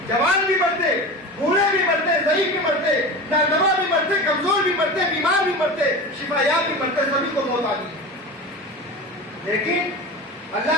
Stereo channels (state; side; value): normal; both; correlation 0.30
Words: جوان بھی مرتے، بوڑھے بھی مرتے، ضعیف بھی مرتے، نادوا بھی مرتے، کمزور بھی مرتے، بیمار بھی مرتے، شفا یاب بھی مرتے، سبھی کو موت آ گئی۔ لیکن اللہ